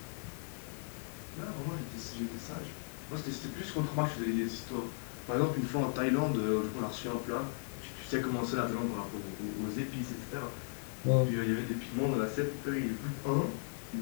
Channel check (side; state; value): right; silent; digital silence